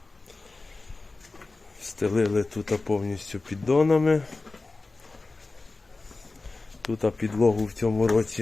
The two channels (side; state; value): right; quieter; 3.5 dB